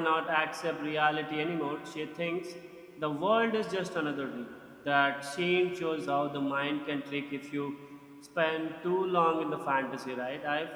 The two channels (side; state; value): both; identical; correlation 1.00